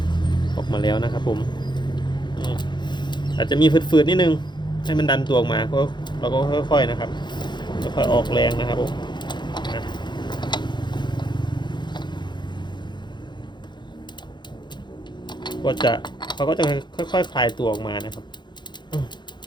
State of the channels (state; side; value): late; right; 0.22 ms